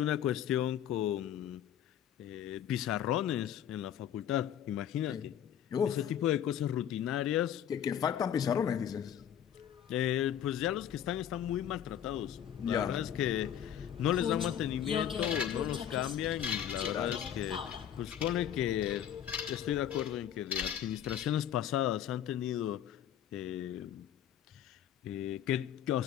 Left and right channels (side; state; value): right; quieter; 10.0 dB